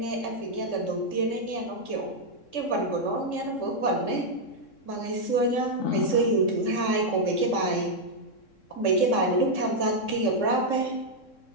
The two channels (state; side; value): late; right; 3.6 ms